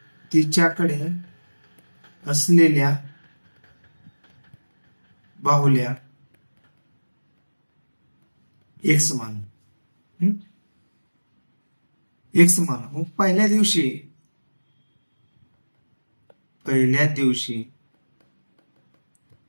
तिच्याकडे असलेल्या बाहुल्या एक समान मग पहिल्या दिवशी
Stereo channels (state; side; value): inverted; both; correlation -1.00